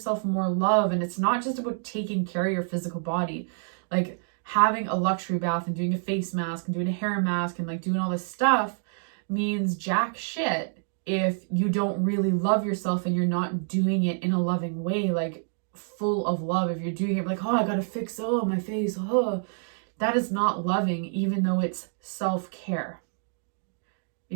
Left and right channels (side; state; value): left; silent; digital silence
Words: more love? And it's not just about taking care of your physical body, like having a luxury bath and doing a face mask and doing a hair mask and like doing all this stuff means jack shit if you don't really love yourself and you're not doing it in a loving way, like full of love. If you're doing it like, oh, I gotta fix my face, that is not loving, even though it's self-care.